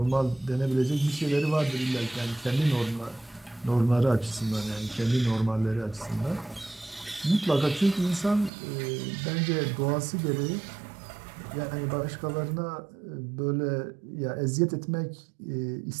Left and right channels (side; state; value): left; drops out; at 8.5 s